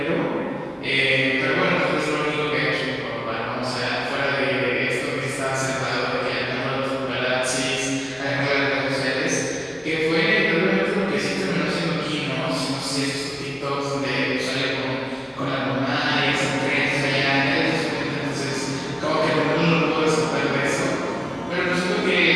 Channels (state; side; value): identical; both; correlation 1.00